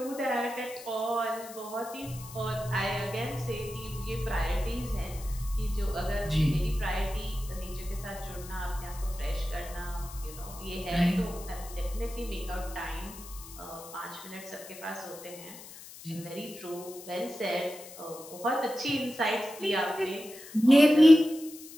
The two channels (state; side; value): noise; left; hiss, 16 dB below the sound